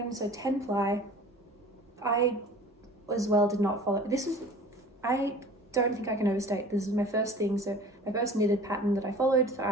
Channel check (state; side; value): normal; both; correlation 0.43